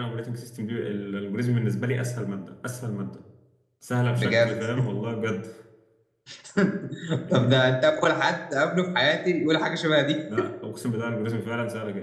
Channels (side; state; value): both; identical; correlation 1.00